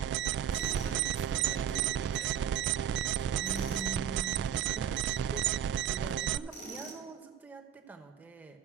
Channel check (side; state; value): left; quieter; 9.4 dB